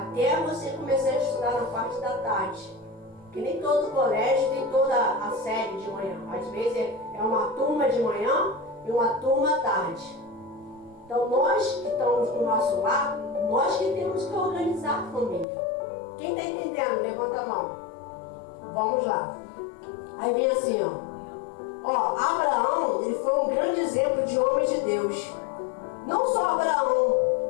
você começar a estudar na parte da tarde. Que nem todo colégio tem toda a série de manhã. Às vezes é uma turma de manhã e uma turma à tarde. Então nós que estamos no nosso lar, nós que temos que organizar a família. Quem está entendendo? Levanta a mão. Vamos lá. Aí vem assim, ó. Abraão, ele foi um grande exemplo de homem de Deus. Não só Abraão,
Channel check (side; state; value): right; drops out; at 15.5 s